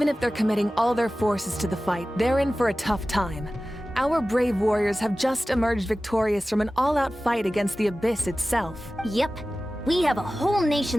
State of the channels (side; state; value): both; normal; correlation 0.96